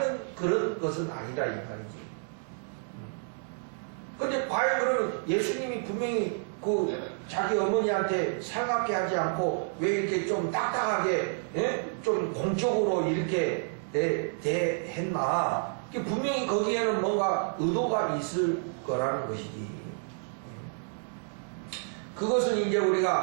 그런 것은 아니다 이 말이지. 근데 과연 그러면 예수님이 분명히 그 자기 어머니한테 살갑게 하지 않고 왜 이렇게 좀 딱딱하게 좀 공적으로 이렇게 대했나? 분명히 거기에는 뭔가 의도가 있을 거라는 것이지. 그것은 이제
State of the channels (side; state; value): left; silent; digital silence